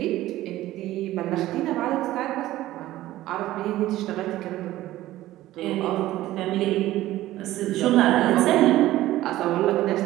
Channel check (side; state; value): left; quieter; 15.5 dB